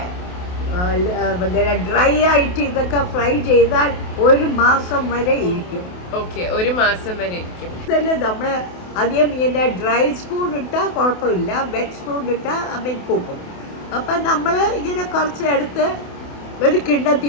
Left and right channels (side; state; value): right; late; 28 ms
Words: ഡ്രൈ ആയിട്ട് ഇതൊക്കെ ഫ്രൈ ചെയ്താൽ 1 മാസം വരെ ഇരിക്കും. ഓക്കെ, 1 മാസം വരെ ഇരിക്കും. ഇതല്ലേ നമ്മൾ അധികം ഇങ്ങനെ ഡ്രൈ സ്പൂൺ ഇട്ടാൽ കുഴപ്പമില്ല, വെറ്റ് സ്പൂൺ ഇട്ടാൽ പോകും. അപ്പം നമ്മൾ ഇങ്ങനെ കുറച്ച് എടുത്ത് ഒരു കിണ്ണത്തി